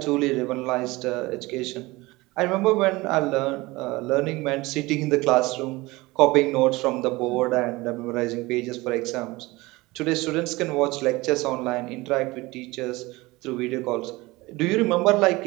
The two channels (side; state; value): left; quieter; 21.4 dB